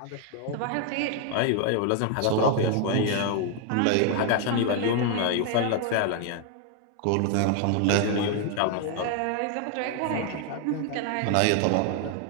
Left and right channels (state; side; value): different; both; correlation 0.00